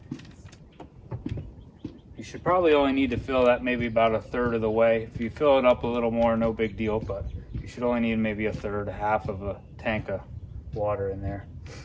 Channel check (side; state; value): both; identical; correlation 1.00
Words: You should probably only need to fill that maybe about a third of the way. If you fill it up a little more, no big deal, but you should only need maybe a third, half of a tank of water in there.